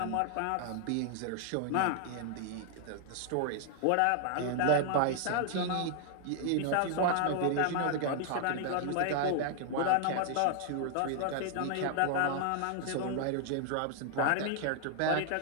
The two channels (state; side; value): different; both; correlation 0.00